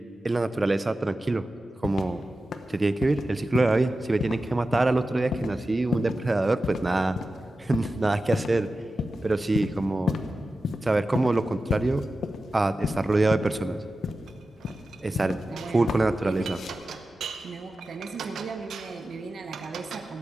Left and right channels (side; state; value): both; normal; correlation 0.93